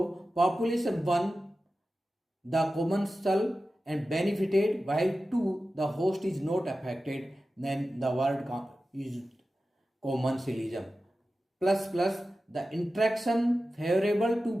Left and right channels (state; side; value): normal; both; correlation 0.94